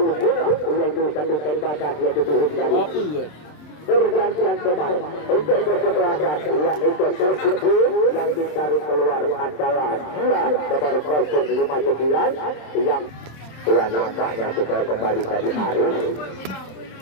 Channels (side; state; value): right; late; 27 ms